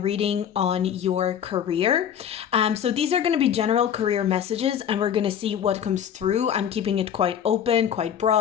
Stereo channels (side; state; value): right; quieter; 9.0 dB